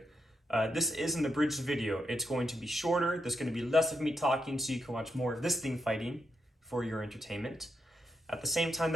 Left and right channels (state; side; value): normal; both; correlation 0.83